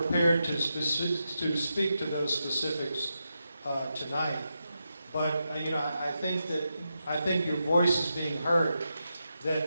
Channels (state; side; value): inverted; both; correlation -0.87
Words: to speak to those specifics tonight, but I think your voice is being heard.